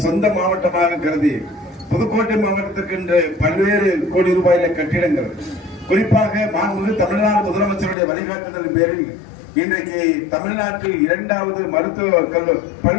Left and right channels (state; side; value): drops out; right; at 8.0 s